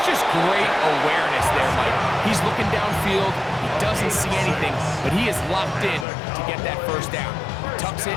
just great awareness there, Mike. He's looking downfield. He doesn't see anything, but he is locked in to get that 1st down. He tucks it,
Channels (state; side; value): drops out; right; at 6.1 s